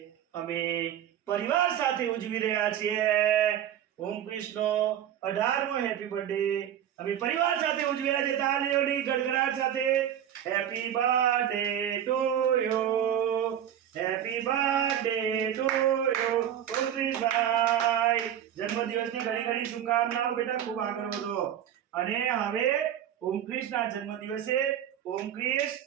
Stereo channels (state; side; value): quieter; left; 10.3 dB